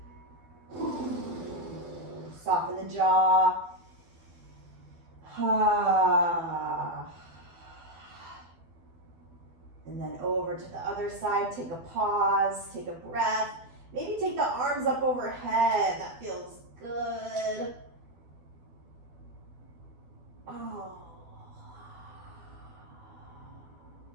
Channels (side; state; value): left; late; 12 ms